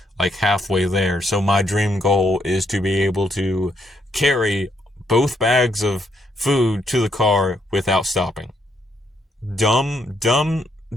halfway there. So my dream goal is to be able to carry both bags of food to the car without stopping. Dumb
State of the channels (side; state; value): both; normal; correlation 0.74